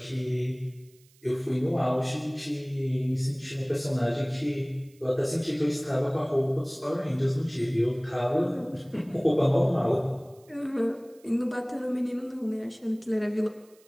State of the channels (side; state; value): right; noise; hiss, 30 dB below the sound